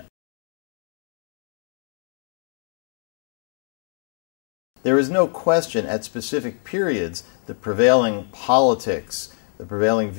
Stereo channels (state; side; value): silent; right; digital silence